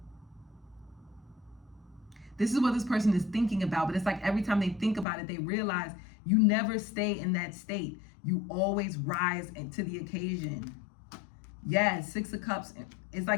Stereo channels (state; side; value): drops out; right; at 5.1 s